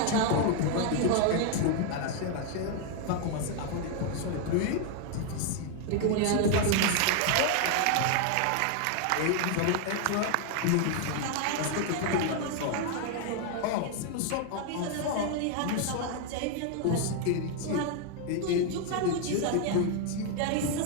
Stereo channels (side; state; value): both; different; correlation 0.00